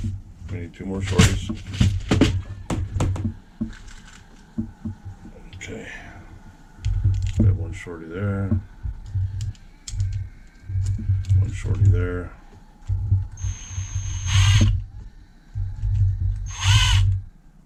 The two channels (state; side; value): identical; both; correlation 1.00